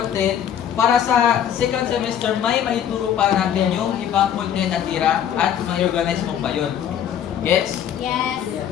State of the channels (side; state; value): right; quieter; 9.5 dB